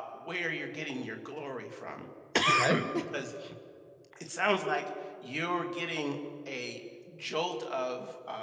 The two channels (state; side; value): identical; both; correlation 1.00